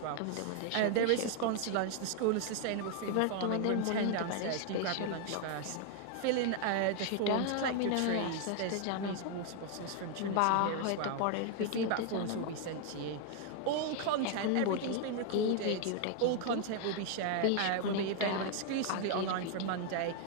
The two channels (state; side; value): different; both; correlation 0.00